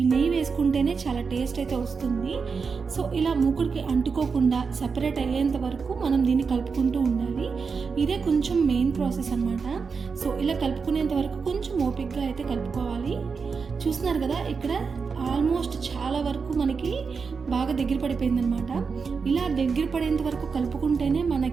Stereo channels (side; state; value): left; quieter; 5.3 dB